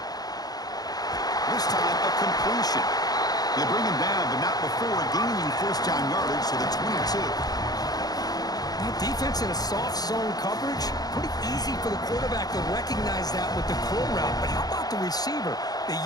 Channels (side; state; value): right; late; 0.19 ms